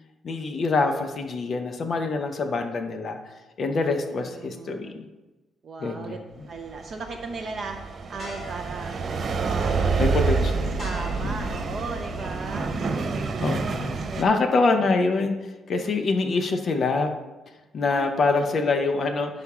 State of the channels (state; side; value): normal; both; correlation 0.76